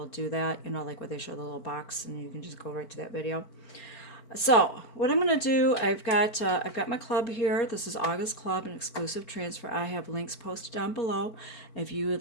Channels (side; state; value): right; late; 4.5 ms